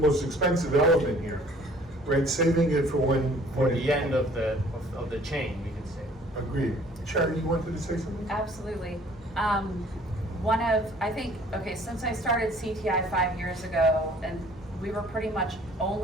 most expensive element here, right? Saving it for when... For the end of the chain, we could say. Agreed. Sharon, you wanted to say something? Absolutely. Since I started CTI 5 years ago, and we were pretty much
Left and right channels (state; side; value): normal; both; correlation 0.55